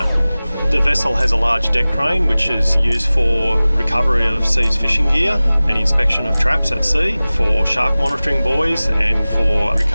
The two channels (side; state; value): both; inverted; correlation -0.98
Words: The vessel has a large deck crane which is used for recovery of seized fishing gear and inspection of traps at sea, for shark monitoring buoys and for